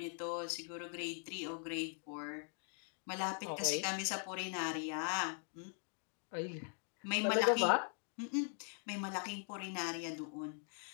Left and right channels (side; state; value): right; silent; 50 dB below the other